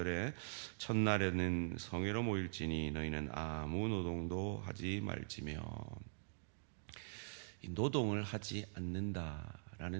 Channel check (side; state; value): left; silent; digital silence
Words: 첫날에는 성회로 모일지니 너희는 아무 노동도 하지 말지며. 이 노동을 하지